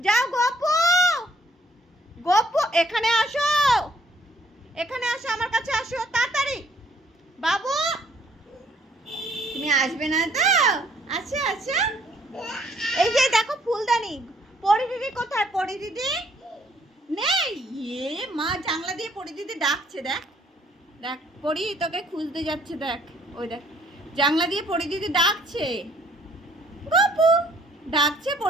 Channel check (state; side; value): normal; both; correlation 0.64